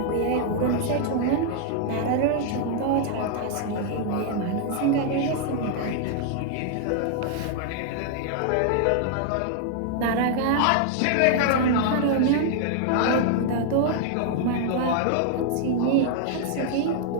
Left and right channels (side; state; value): both; different; correlation 0.00